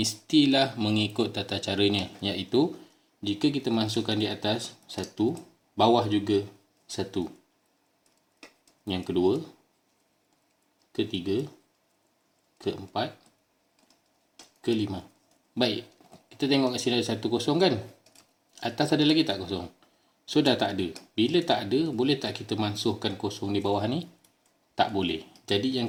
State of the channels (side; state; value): both; identical; correlation 1.00